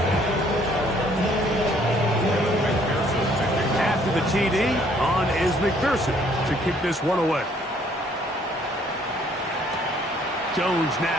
After the TD, on is McPherson to kick this one away. Jones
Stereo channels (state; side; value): normal; both; correlation 0.63